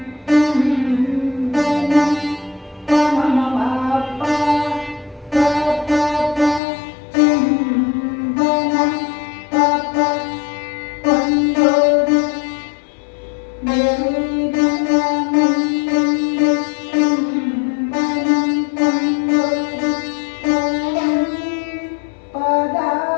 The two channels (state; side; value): drops out; right; at 6.6 s